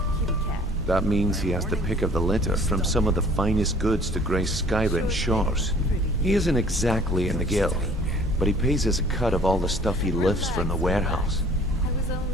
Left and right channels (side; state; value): both; normal; correlation 0.52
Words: That means he has the pick of the litter from some of the finest goods to grace Skyrim shores. He isn't exactly in the guild, but he pays us a cut of all the stuff he lifts from the warehouse. I was